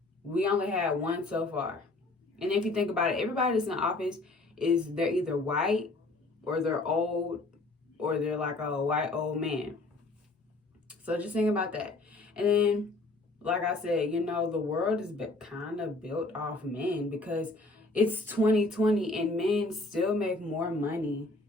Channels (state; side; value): quieter; right; 3.1 dB